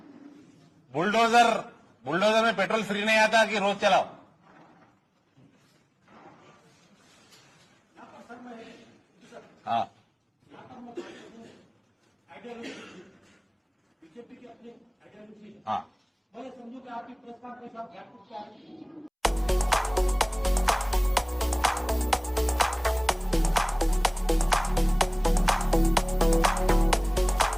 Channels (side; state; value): both; identical; correlation 1.00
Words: बुलडोजर में पेट्रोल फ्री नहीं आता कि रोज चलाओ। हाँ, बीजेपी की अपनी आइडियोलॉजी है। हाँ, मैं समझू कि आपकी प्रेस कॉन्फ्रेंस आप